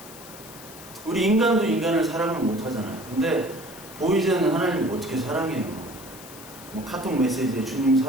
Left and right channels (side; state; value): left; noise; hiss, 17 dB below the sound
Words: 우리 인간도 인간을 사랑을 못 하잖아요. 근데 보이지 않는 하나님을 어떻게 사랑해요? 뭐 카톡 메시지에 주님